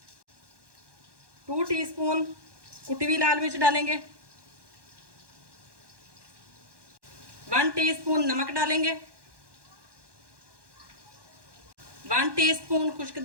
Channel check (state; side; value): late; left; 1.1 ms